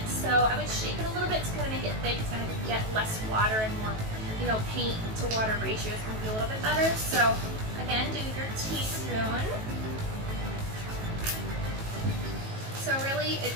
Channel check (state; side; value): late; left; 18 ms